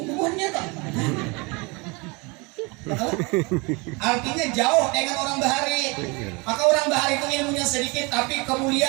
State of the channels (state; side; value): quieter; left; 27.8 dB